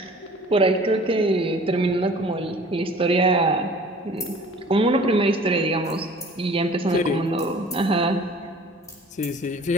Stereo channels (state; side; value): normal; both; correlation 0.47